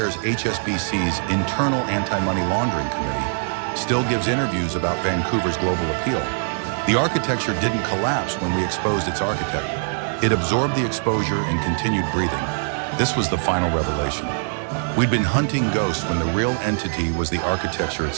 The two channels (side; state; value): left; silent; 64 dB below the other